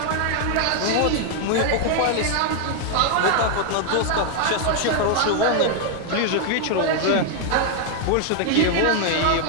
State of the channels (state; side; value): different; both; correlation 0.00